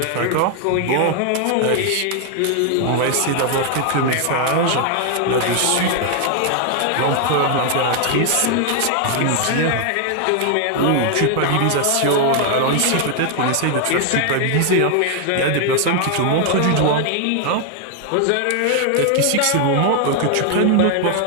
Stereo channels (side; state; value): both; different; correlation 0.00